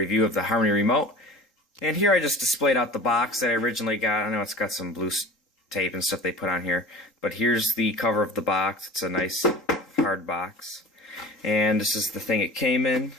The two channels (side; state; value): both; normal; correlation 0.39